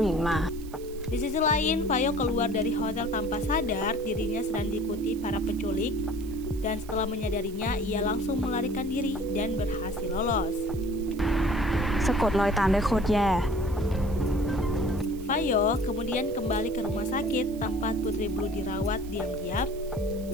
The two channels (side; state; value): right; noise; hiss, 21 dB below the sound